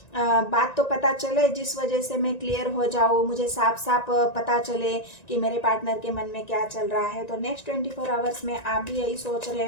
बात तो पता चले जिस वजह से मैं क्लियर हो जाऊँ, मुझे साफ साफ पता चले कि मेरे पार्टनर के मन में क्या चल रहा है। तो नेक्स्ट 24 आवर्स में आप भी यही सोच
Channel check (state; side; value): late; right; 1.9 ms